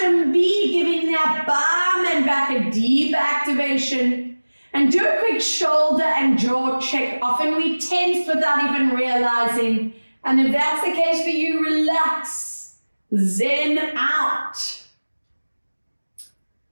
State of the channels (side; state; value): both; inverted; correlation -1.00